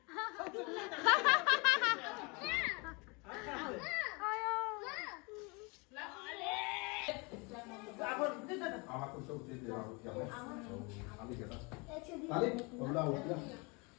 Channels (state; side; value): quieter; right; 29.3 dB